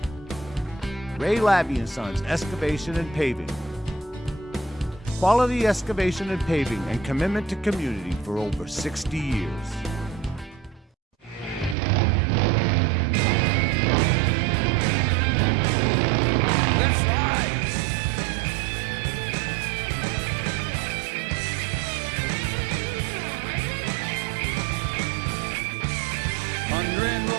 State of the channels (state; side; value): drops out; left; at 11.8 s